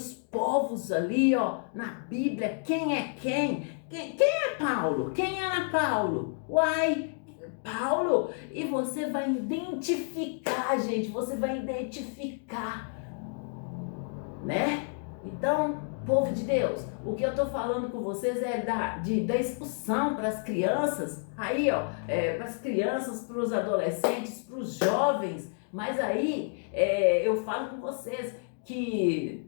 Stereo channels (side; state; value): right; silent; 58 dB below the other